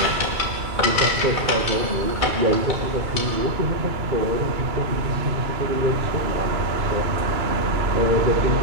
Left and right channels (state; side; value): late; left; 2.3 ms